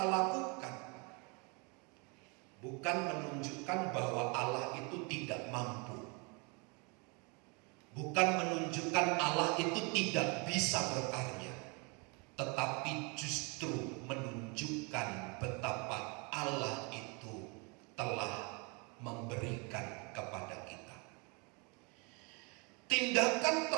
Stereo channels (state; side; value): quieter; left; 31.8 dB